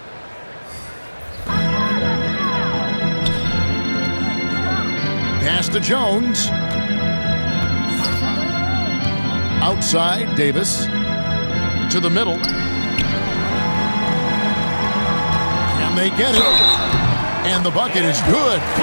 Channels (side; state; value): both; inverted; correlation -1.00